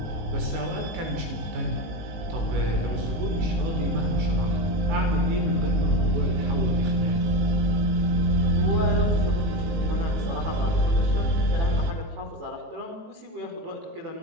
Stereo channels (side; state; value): left; late; 18 ms